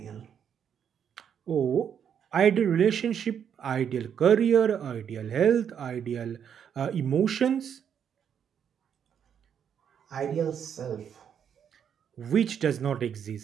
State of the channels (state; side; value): quieter; left; 8.2 dB